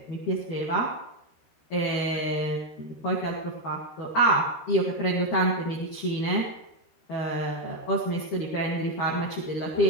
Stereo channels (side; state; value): right; late; 13 ms